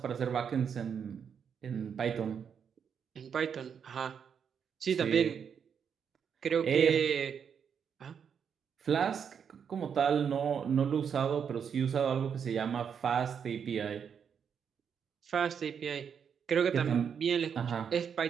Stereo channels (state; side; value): quieter; left; 7.3 dB